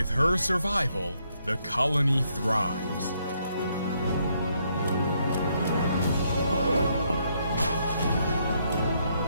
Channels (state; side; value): inverted; both; correlation -0.74